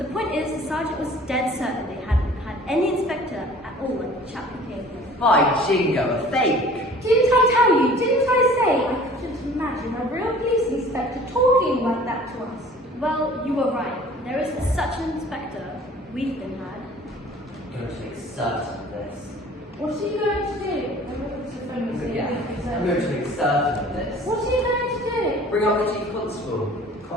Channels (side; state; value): both; normal; correlation 0.48